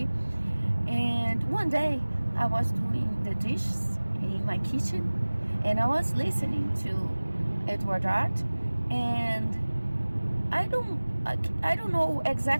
And one day I was doing the dishes in my kitchen, and I was listening to Edward Art, and I don't know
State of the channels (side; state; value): both; inverted; correlation -1.00